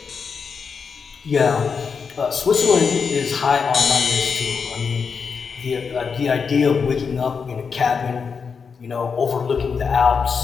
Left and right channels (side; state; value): right; quieter; 5.8 dB